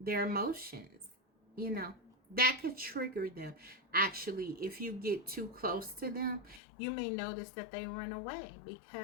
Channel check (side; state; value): right; drops out; at 6.6 s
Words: emotions, you know. That could trigger them. Actually, if you get too close to them, you may notice that they run away